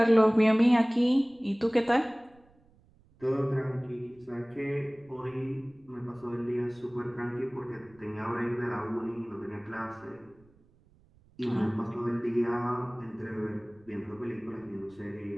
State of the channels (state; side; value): noise; right; rumble, 30 dB below the sound